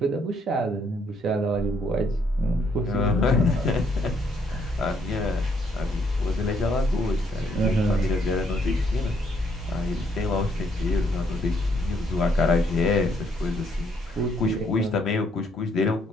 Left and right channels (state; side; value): normal; both; correlation 0.70